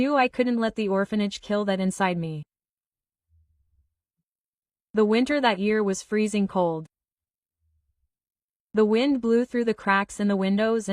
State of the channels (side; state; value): both; identical; correlation 1.00